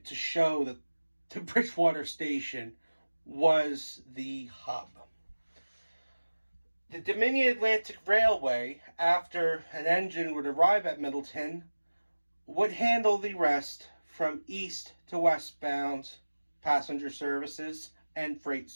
to show that the Bridgewater station was the hub. The Dominion Atlantic Railway, after an engine would arrive at Middleton, would handle the rest from east to westbound passenger services and freight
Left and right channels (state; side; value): inverted; both; correlation -1.00